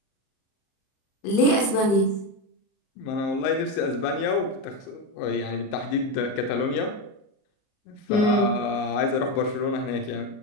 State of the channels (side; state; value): right; late; 38 ms